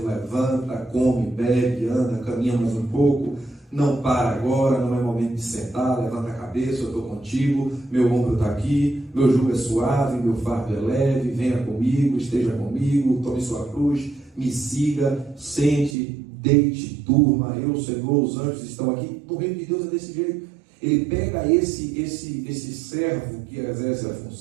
levanta, come, bebe, anda, caminha mais um pouco, não para agora, não é momento de sentar, levanta a cabeça, eu estou contigo, meu ombro está aqui, meu jugo é suave, meu fardo é leve, venha comigo, esteja comigo, tome sua cruz, me siga, sente, deite, durma, eu, Senhor, os anjos estão aqui. No reino de Deus é desse jeito. Ele pega esse servo que exerce a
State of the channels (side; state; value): left; drops out; at 16.0 s